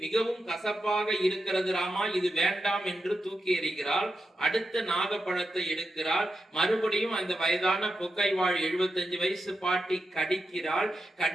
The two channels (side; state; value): both; normal; correlation 0.87